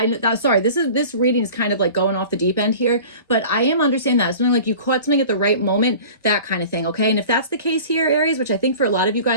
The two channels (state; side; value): inverted; both; correlation -0.41